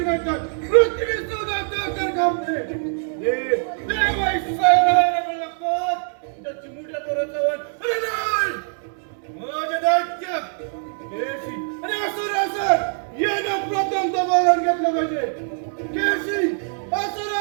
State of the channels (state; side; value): silent; left; digital silence